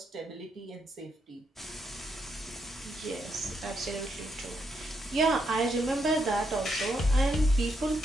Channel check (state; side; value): normal; both; correlation 0.79